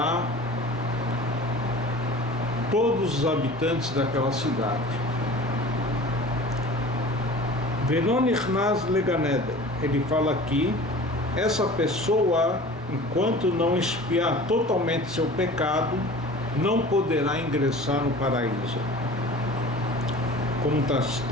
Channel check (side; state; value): both; normal; correlation 0.41